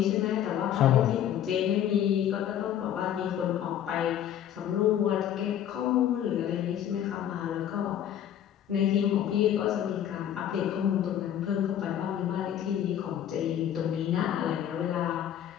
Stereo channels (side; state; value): right; quieter; 10.5 dB